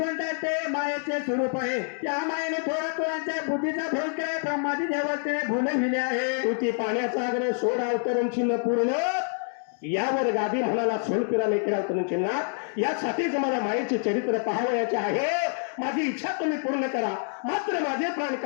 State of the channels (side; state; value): right; silent; 60 dB below the other